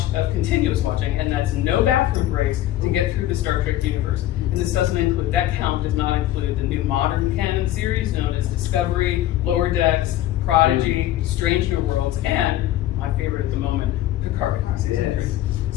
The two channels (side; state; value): right; quieter; 13.7 dB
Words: continuous watching, and that's no bathroom breaks to get through the Star Trek universe. And this doesn't include, that count does not include the new modern canon series known as Discovery, Lower Decks, Prodigy, Strange New Worlds, and my favorite at the moment, Picard season 3.